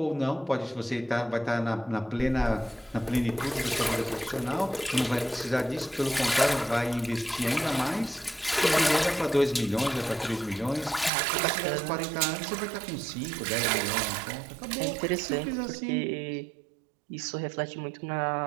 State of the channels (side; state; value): left; drops out; at 11.1 s